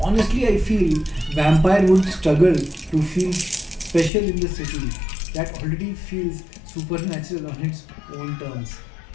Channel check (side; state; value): right; drops out; at 4.1 s